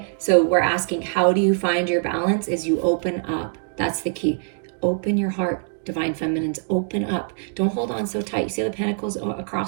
so we're asking, how do you find your balance? Is you open up. That's the key. Open your heart, divine feminines. Open up. Don't hold on so tight. You see the pentacles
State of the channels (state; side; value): silent; left; digital silence